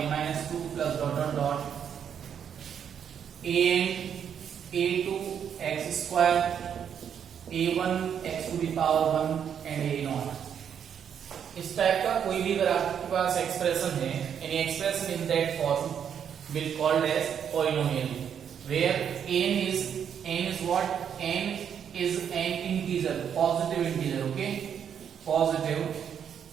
minus 2 plus dot dot dot an a2 x square, a1 x to the power 1 and a0. इस type का कोई भी अगर आपके पास expression है, any expression in that form will called as polynomial, where n is what? N is an integer, positive integer. Okay, positive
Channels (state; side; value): quieter; left; 8.2 dB